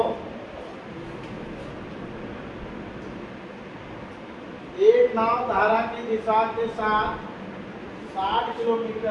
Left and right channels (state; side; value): identical; both; correlation 1.00